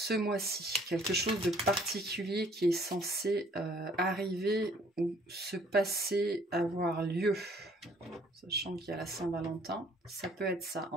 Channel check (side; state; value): both; normal; correlation 0.59